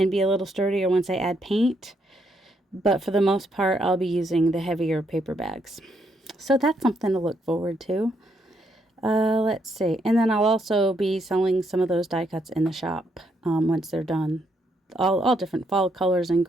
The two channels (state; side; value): normal; both; correlation 0.75